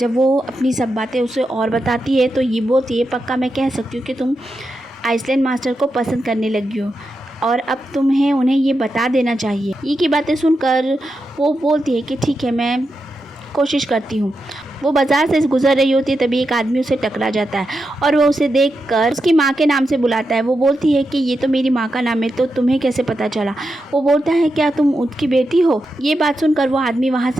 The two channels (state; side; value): normal; both; correlation 0.87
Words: वो अपनी सब बातें उसे और बताती है तो ये बोलती है पक्का मैं कह सकती हूँ कि तुम आइसलैंड मास्टर को पसंद करने लगी हो और अब तुम्हें उन्हें ये बता देना चाहिए। ये की बातें सुनकर वो बोलती है कि ठीक है, मैं कोशिश करती हूँ। वो बाज़ार से गुजर रही होती है तभी एक आदमी उसे टकरा जाता है और वो उसे देखकर उसकी माँ के नाम से बुलाता है। वो बोलती है कि ये तो मेरी माँ का नाम है, तो तुम्हें कैसे पता चला। वो बोलता है क्या तुम उसकी बेटी हो। ये बात सुनकर वो आदमी वहाँ